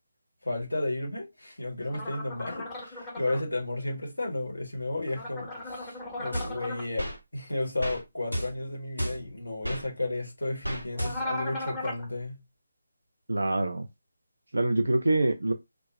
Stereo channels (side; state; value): both; inverted; correlation -0.92